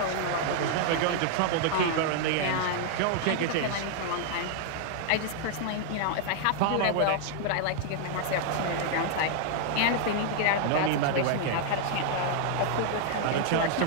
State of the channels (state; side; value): different; both; correlation 0.00